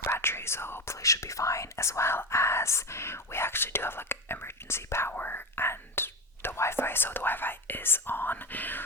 batteries, so hopefully it should be fine, as well as we actually do have like emergency power and the Wi-Fi, so the Wi-Fi is on,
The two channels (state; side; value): normal; both; correlation 0.19